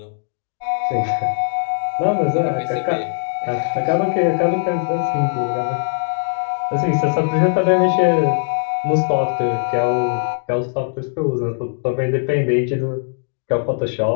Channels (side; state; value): right; silent; digital silence